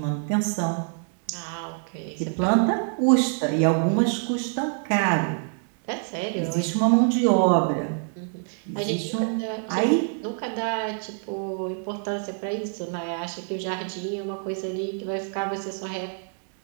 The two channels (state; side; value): silent; left; 61 dB below the other